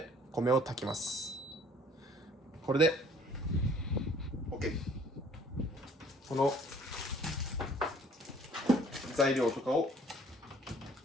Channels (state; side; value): normal; both; correlation 0.56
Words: 米を炊きます。これで OK。この材料とかを